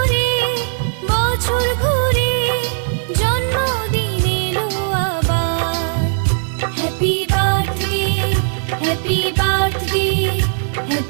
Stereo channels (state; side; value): silent; left; 55 dB below the other